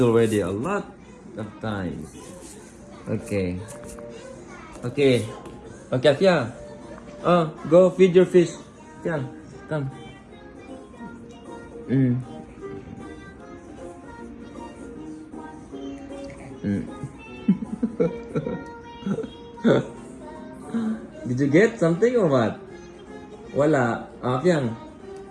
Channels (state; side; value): identical; both; correlation 1.00